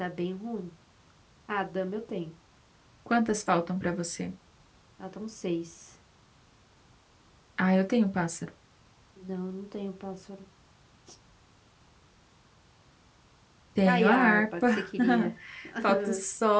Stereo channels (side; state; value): both; identical; correlation 1.00